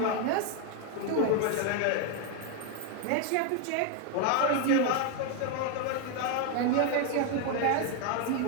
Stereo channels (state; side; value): different; both; correlation 0.01